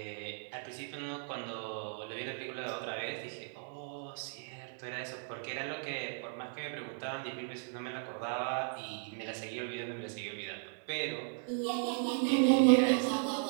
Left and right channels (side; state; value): left; silent; 54 dB below the other